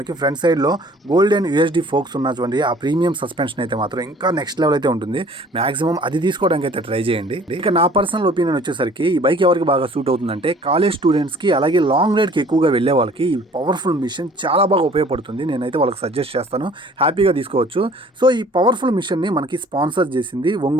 ఫ్రంట్ సైడ్లో గోల్డెన్ యూఎస్డి ఫోక్స్ ఉన్నటువంటి ఆ ప్రీమియం సస్పెన్షన్ అయితే మాత్రం ఇంకా నెక్స్ట్ లెవెల్ అయితే ఉంటుంది. మ్యాక్సిమం అది తీసుకోవడానికి అయితే ట్రై చేయండి. ఇక నా పర్సనల్ ఒపీనియన్ వచ్చేసరికి ఈ బైక్ ఎవరికి బాగా సూట్ అవుతుందంటే కాలేజ్ స్టూడెంట్స్కి, అలాగే లాంగ్ రైడ్కి ఎక్కువగా వెళ్ళే వాళ్ళకి ఈ పవర్ఫుల్ మిషన్ చాలా బాగా ఉపయోగపడుతుంది. నేనైతే వాళ్ళకి సజెస్ట్ చేస్తాను, హ్యాపీగా తీసుకోవచ్చు. సో ఈ పవర్ఫుల్ మిషన్ని మనకి స్పాన్సర్ చేసింది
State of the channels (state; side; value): normal; both; correlation 0.52